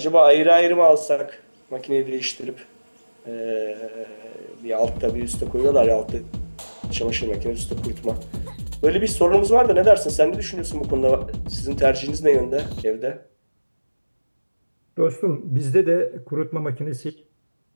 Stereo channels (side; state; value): both; inverted; correlation -1.00